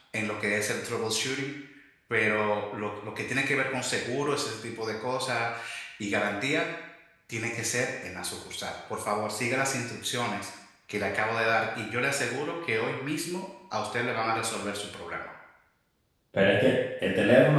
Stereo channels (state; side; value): identical; both; correlation 1.00